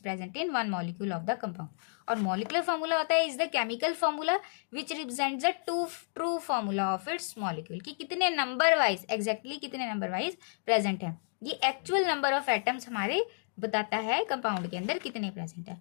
in one molecule of the compound. और molecular formula होता है is the chemical formula which represents the true formula of its molecule, कि कितने number wise exactly कितने number wise present है। ये एक्चुअल नंबर ऑफ एटम्स हमारे बताता है कंपाउंड के अंदर कितने प्रेजेंट है।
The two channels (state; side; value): silent; right; digital silence